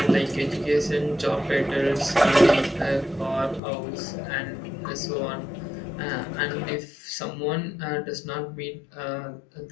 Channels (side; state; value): right; drops out; at 3.6 s